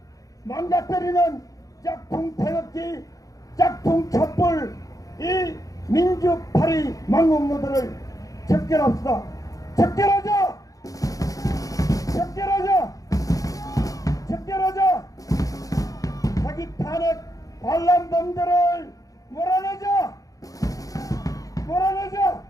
망가뜨리는 짝퉁 태극기, 짝퉁 촛불 이 민주파리 망국노들을 척결합시다. 척결하자! 척결하자! 척결하자! 사기 탄핵 반란범들을 몰아내자! 몰아내자!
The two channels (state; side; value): late; right; 0.17 ms